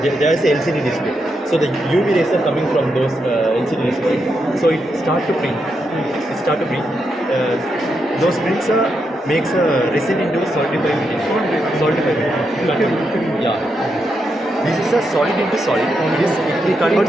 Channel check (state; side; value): normal; both; correlation 0.83